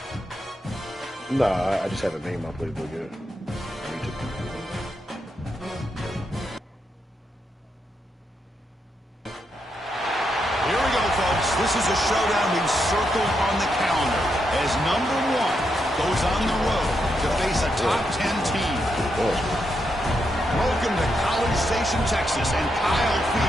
Nah, I just haven't made my playbook yet. I need to. Here we go, folks. This is a showdown we've circled on the calendar as number 1 goes on the road to face a top 10 team. Welcome to College Station, Texas, and Kyle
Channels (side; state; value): both; normal; correlation 0.82